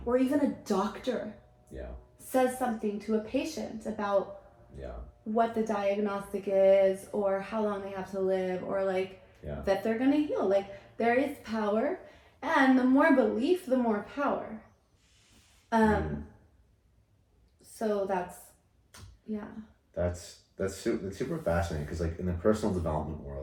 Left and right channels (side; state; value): both; identical; correlation 1.00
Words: or even a doctor says something to a patient about what the diagnostic is, or how long they have to live, or like that they're going to heal. Like there is power, and the more belief, the more power. So that's super fascinating, because like in the personal development